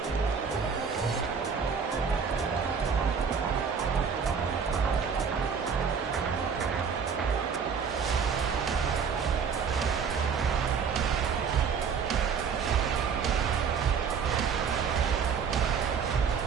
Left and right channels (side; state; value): left; quieter; 6.3 dB